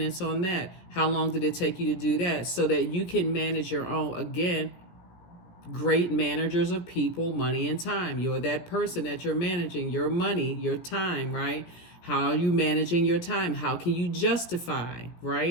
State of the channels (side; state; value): right; late; 17 ms